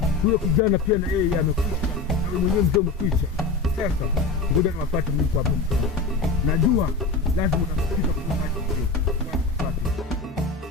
Huyo kijana pia na yeye amekwisha. Na wewe mwenyewe mzee umekwisha. Sasa ngoja niwafuate mimi hapo mzee. Najua lazima utafikisha kwa maji mzee.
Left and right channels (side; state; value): right; quieter; 3.8 dB